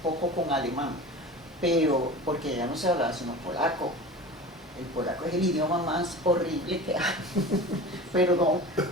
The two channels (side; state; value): both; normal; correlation 0.35